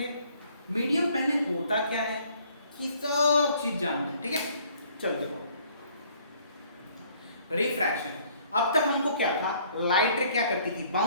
मीडियम पहले होता क्या है कि सब चीज जानते हैं, ठीक है। चल देखो, रिफ्रैक्शन। अब तक हमको क्या था? लाइट रे क्या करती थी?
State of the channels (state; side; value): inverted; both; correlation -0.61